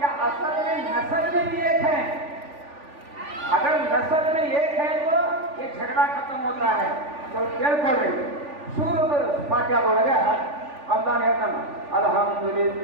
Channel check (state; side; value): late; left; 3.4 ms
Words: असल में नस्ल में भी एक है. अगर नस्ल में एक है तो ये झगड़ा खत्म होता है. तो ಕೇಳ್ಕೊಳ್ಳಿ, ಸೂರತುಲ್ ಫಾತಿಹಾ ಒಳಗೆ ಅಲ್ಲಾಹ್ ಹೇಳ್ತಾನೆ,